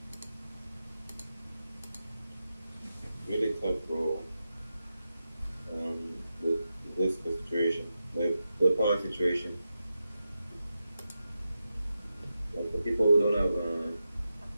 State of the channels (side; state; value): both; inverted; correlation -0.90